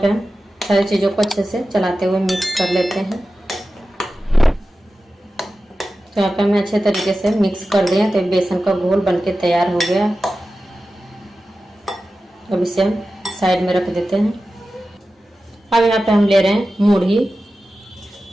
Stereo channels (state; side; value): normal; both; correlation 0.94